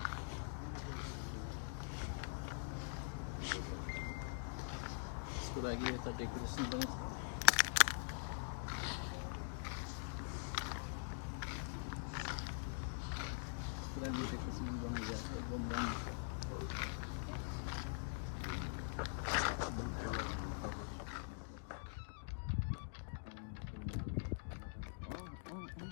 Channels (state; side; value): silent; right; digital silence